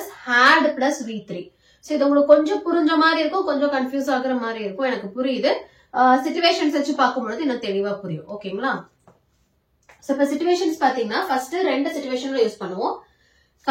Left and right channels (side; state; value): both; identical; correlation 1.00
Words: had plus V3. So இது உங்களுக்கு கொஞ்சம் புரிஞ்ச மாதிரி இருக்கும், கொஞ்சம் கன்ஃபியூஸ் ஆகுற மாதிரி இருக்கும், எனக்கு புரியுது. சிச்சுவேஷன்ஸ் வச்சு பார்க்கும்போது இன்னும் தெளிவா புரியும். ஓகேங்களா? சோ இப்ப சிச்சுவேஷன்ஸ் பாத்தீங்கன்னா ஃபர்ஸ்ட் ரெண்டு சிச்சுவேஷன்ல யூஸ் பண்ணுவோம்.